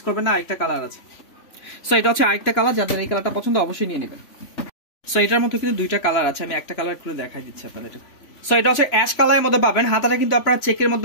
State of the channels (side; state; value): right; late; 3.5 ms